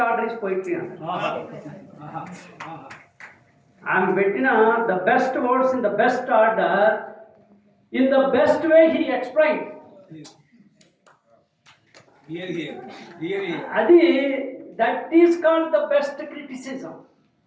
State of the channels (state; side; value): identical; both; correlation 1.00